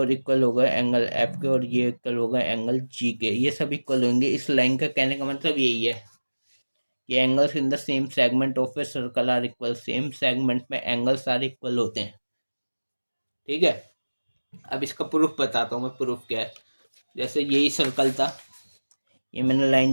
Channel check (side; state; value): both; inverted; correlation -1.00